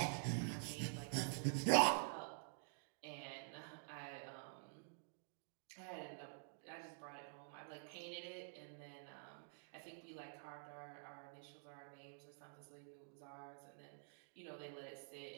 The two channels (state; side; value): silent; left; digital silence